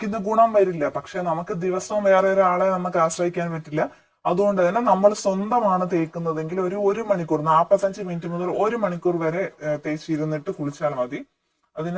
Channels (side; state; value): both; identical; correlation 1.00